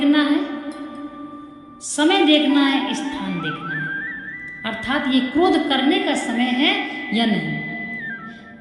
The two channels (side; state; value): both; identical; correlation 1.00